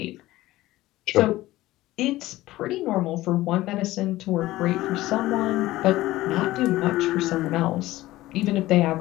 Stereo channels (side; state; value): right; quieter; 17.0 dB